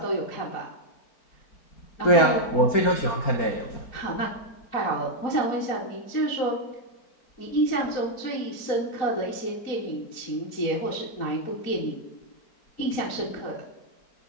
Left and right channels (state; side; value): late; right; 4.4 ms